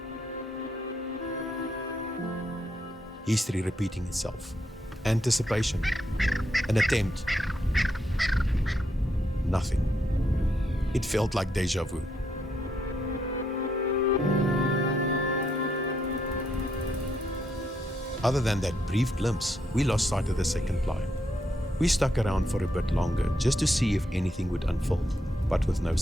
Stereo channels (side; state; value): both; normal; correlation 0.78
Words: History repeating itself. Anticipation. An attempt. Nothing. It felt like deja vu. Other than that brief glimpse, we lost sight of the second climb. We stuck around for a bit longer just to see if anything would unfold, but with no